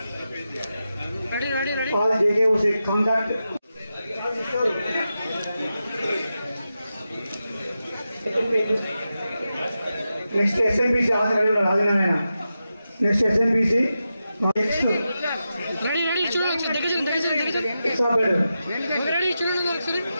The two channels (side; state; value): both; inverted; correlation -0.90